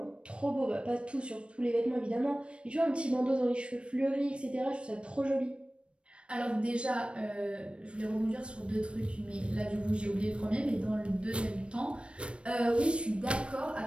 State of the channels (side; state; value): left; late; 0.059 ms